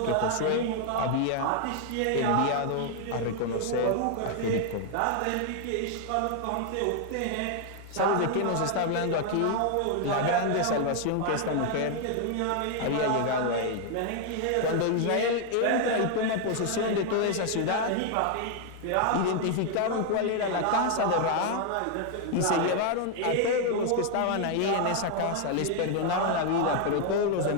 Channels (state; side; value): different; both; correlation 0.00